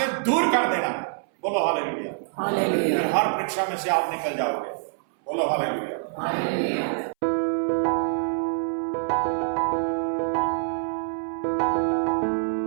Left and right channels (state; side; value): silent; left; 62 dB below the other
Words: दूर कर देना। बोलो हालेलुया, हालेलुया। हर परीक्षा में से आप निकल जाओगे। बोलो हालेलुया, हालेलुया।